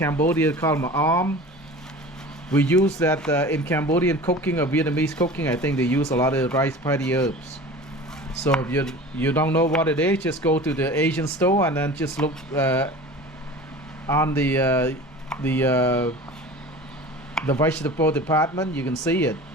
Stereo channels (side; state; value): both; normal; correlation 0.38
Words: called ma'am. We use that in Cambodian cooking or Vietnamese cooking. I think they use a lot of rice patty herbs. So if you don't know what it is, just go to the Asian store and then just look on the vegetable department. You can see it.